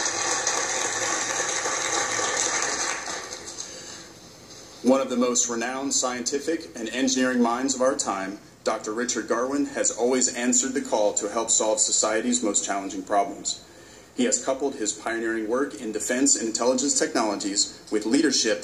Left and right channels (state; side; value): identical; both; correlation 1.00